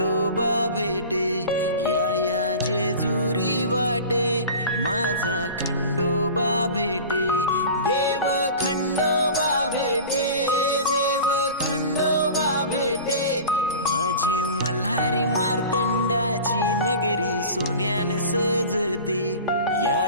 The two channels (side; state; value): both; inverted; correlation -0.37